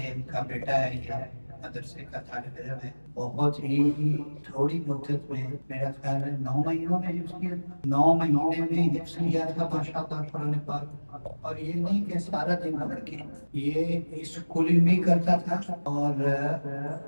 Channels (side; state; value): both; inverted; correlation -1.00